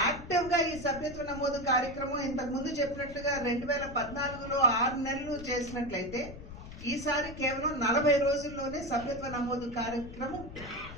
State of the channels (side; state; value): left; noise; rumble, 14 dB below the sound